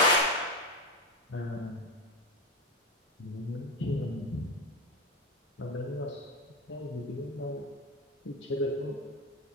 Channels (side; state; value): both; normal; correlation 0.14